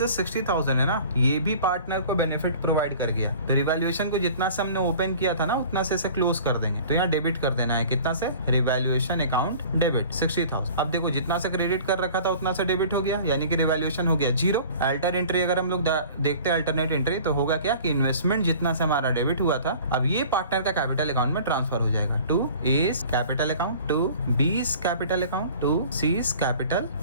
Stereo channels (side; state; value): both; inverted; correlation -0.45